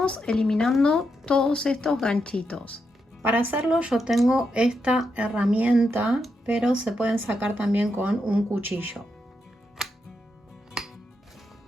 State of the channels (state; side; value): normal; both; correlation 0.83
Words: eliminando todos estos ganchitos. Para hacerlo yo tengo esta herramienta, pero se pueden sacar también con un cuchillo.